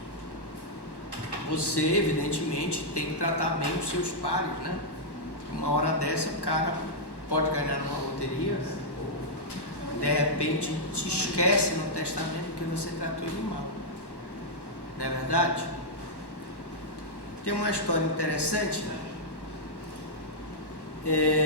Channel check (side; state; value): right; late; 1.1 ms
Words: Você, evidentemente, tem que tratar bem os seus pares, né? Uma hora dessa, o cara pode ganhar numa loteria, ou de repente te esquece no testamento porque você tratou ele mal. Não é verdade? Tem uma história interessante,